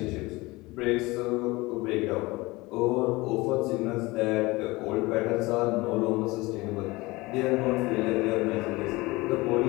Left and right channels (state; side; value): quieter; right; 22.0 dB